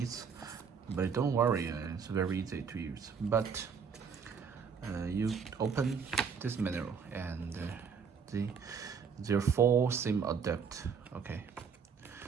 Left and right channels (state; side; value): quieter; left; 6.3 dB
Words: but don't worry, it's very easy to use. But you open this manual, and there are 4 SIM adapt. Okay,